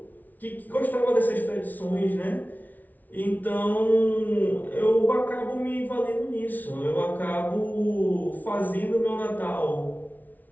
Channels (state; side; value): late; right; 0.080 ms